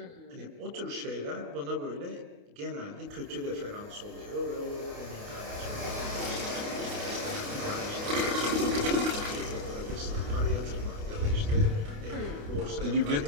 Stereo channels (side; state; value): left; late; 28 ms